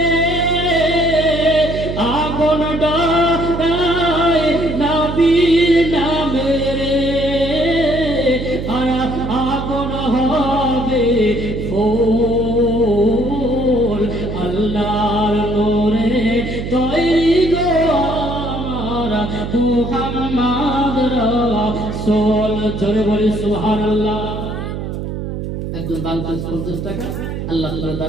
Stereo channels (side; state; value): right; noise; hum, 5 dB below the sound